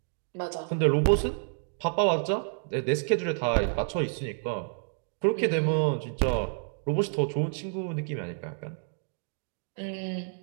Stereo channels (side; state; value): left; silent; digital silence